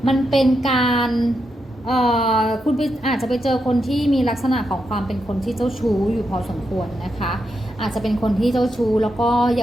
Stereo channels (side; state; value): both; normal; correlation 0.84